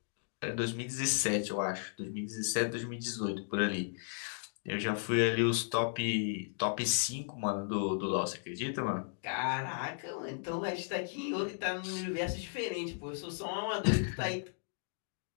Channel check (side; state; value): right; silent; digital silence